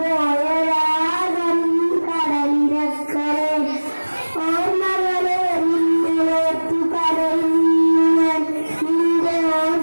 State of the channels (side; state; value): both; inverted; correlation -1.00